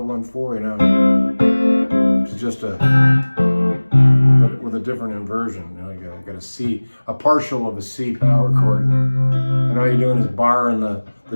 you know. It's just a, but with a different inversion. You know, you got a C, a partial of a C power chord, and all you're doing is barring the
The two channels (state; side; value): inverted; both; correlation -1.00